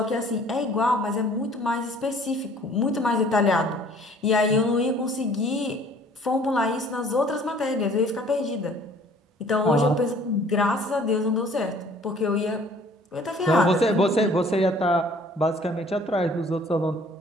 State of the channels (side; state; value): both; normal; correlation 0.55